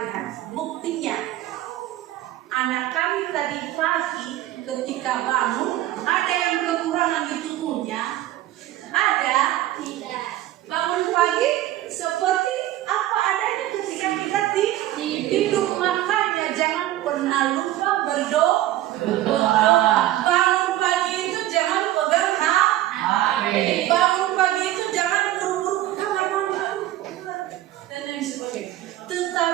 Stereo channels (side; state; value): left; quieter; 14.4 dB